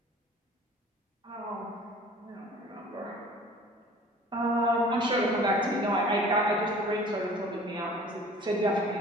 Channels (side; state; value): both; normal; correlation 0.47